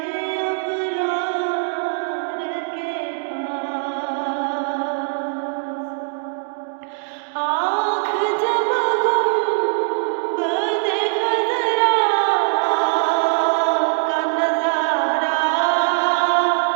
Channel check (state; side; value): silent; left; digital silence